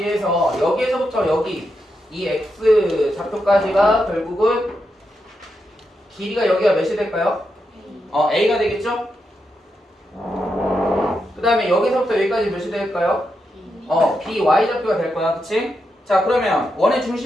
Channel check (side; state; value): both; normal; correlation 0.85